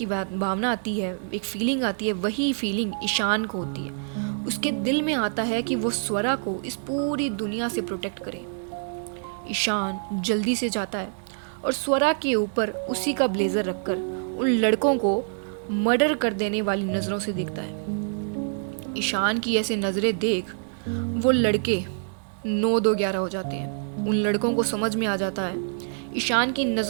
भावना आती है, एक फीलिंग आती है, वही फीलिंग ईशान को होती है। उसके दिल में आता है कि वो स्वरा को इस पूरी दुनिया से प्रोटेक्ट करे। ईशान जल्दी से जाता है और स्वरा के ऊपर उसी का ब्लेजर रखकर उन लड़कों को मर्डर कर देने वाली नज़रों से देखता है। ईशान की ऐसे नज़रें देख वो लड़के 9-2-11 हो जाते हैं। उन लड़कों को समझ में आ जाता है, ईशान की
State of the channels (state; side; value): silent; left; 60 dB below the other